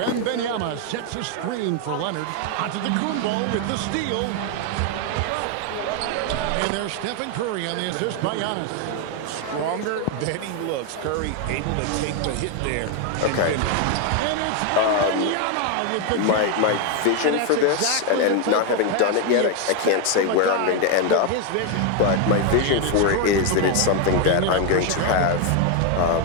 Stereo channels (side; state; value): both; different; correlation 0.01